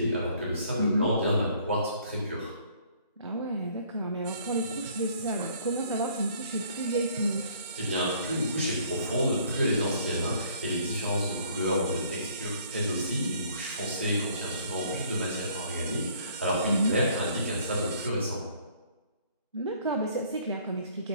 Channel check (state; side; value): inverted; both; correlation -0.59